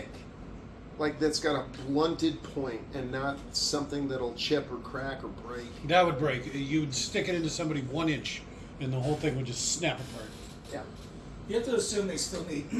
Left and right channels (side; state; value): both; identical; correlation 1.00